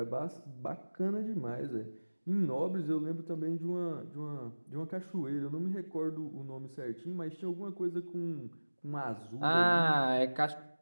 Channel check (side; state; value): both; inverted; correlation -1.00